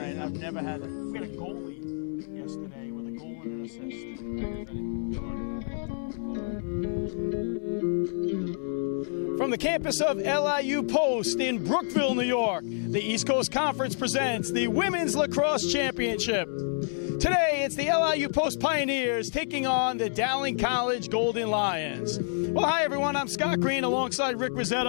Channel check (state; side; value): silent; right; digital silence